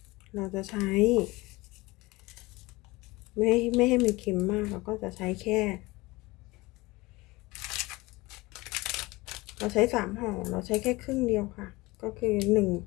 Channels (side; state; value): right; quieter; 21.8 dB